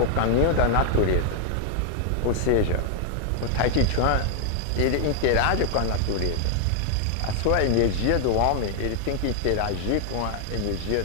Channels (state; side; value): different; both; correlation 0.00